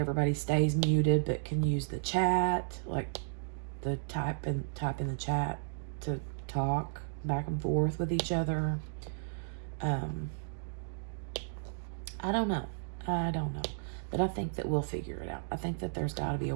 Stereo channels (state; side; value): silent; left; digital silence